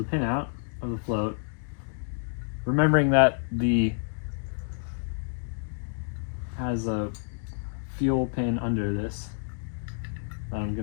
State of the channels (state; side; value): silent; right; digital silence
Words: pin out of the float, remembering that the has a fuel pin under this that I'm